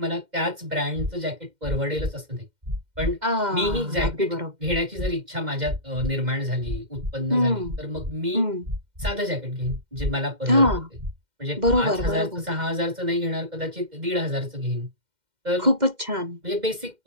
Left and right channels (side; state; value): left; late; 2.1 ms